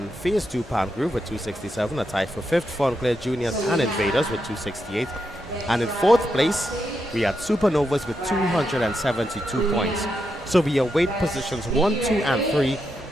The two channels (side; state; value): both; normal; correlation 0.84